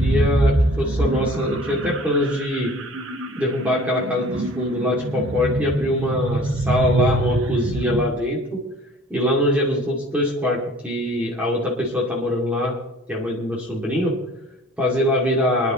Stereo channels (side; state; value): both; normal; correlation 0.49